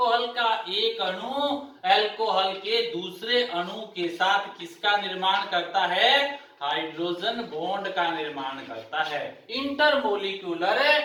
का एक अणु अल्कोहल के दूसरे अणु के साथ किसका निर्माण करता है, हाइड्रोजन बॉन्ड का निर्माण करता है, इंटरमोलिक्यूलर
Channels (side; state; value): both; identical; correlation 1.00